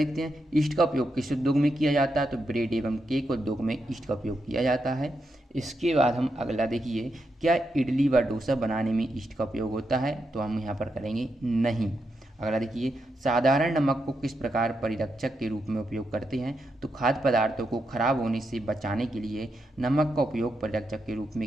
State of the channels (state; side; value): normal; both; correlation 0.84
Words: हैं, ईस्ट का उपयोग किस उद्योग में किया जाता है। तो ब्रेड एवं केक उद्योग में ईस्ट का उपयोग किया जाता है। इसके बाद हम अगला देखिए, क्या इडली व डोसा बनाने में ईस्ट का उपयोग होता है। तो हम यहाँ पर करेंगे नहीं। अगला देखिए, साधारण नमक को किस प्रकार परिरक्षक के रूप में उपयोग करते हैं। तो खाद्य पदार्थों को खराब होने से बचाने के लिए नमक का उपयोग परिरक्षक के रूप